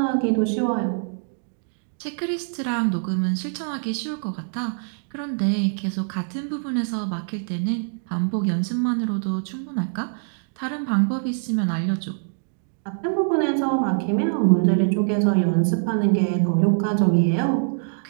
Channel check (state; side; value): silent; left; digital silence